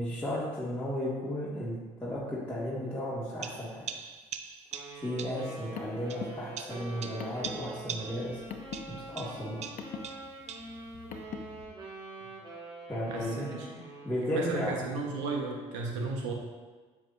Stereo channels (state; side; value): normal; both; correlation 0.56